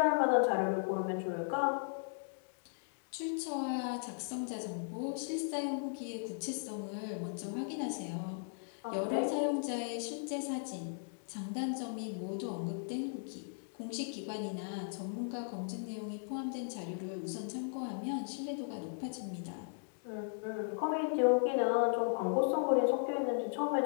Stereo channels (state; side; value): silent; right; digital silence